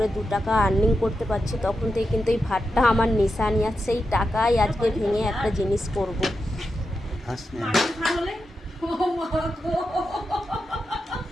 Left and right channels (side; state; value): both; normal; correlation 0.88